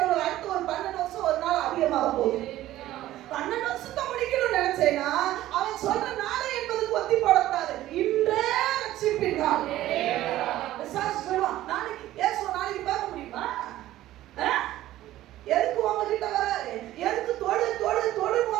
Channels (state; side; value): quieter; left; 14.6 dB